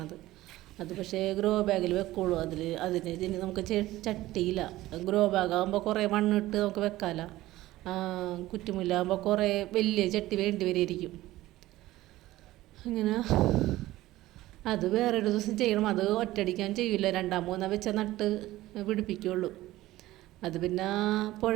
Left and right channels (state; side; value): quieter; left; 16.5 dB